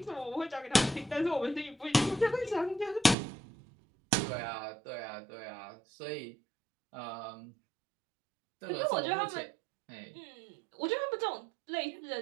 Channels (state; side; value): drops out; left; at 3.2 s